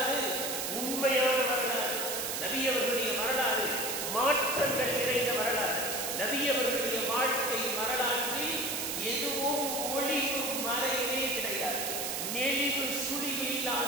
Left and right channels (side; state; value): right; noise; hiss, 2 dB below the sound